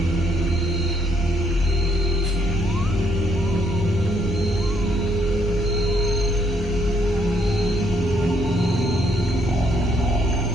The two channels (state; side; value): normal; both; correlation 0.70